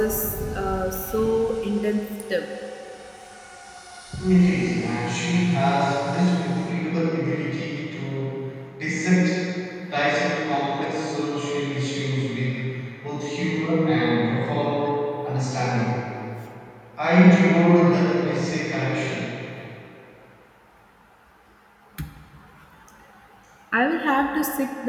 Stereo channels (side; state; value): both; identical; correlation 1.00